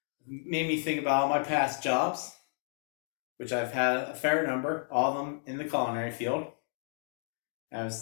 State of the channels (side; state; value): right; silent; digital silence